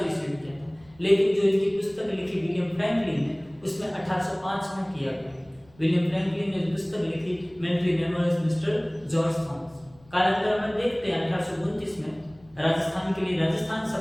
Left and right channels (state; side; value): noise; left; rumble, 28 dB below the sound